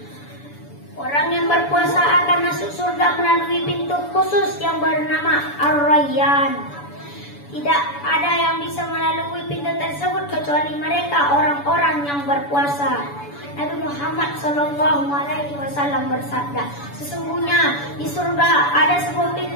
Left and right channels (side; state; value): right; late; 7.0 ms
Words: orang yang berpuasa akan masuk surga melalui pintu khusus yang bernama Ar-Rayyan. Tidak ada yang bisa melalui pintu tersebut kecuali mereka orang-orang yang berpuasa. Nabi Muhammad SAW bersabda, "Sesungguhnya di surga ada sebuah